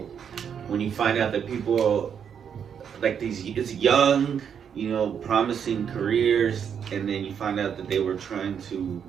when you find out that people like it's young, promising careers, and then you find out that they were trying to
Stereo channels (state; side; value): quieter; left; 7.8 dB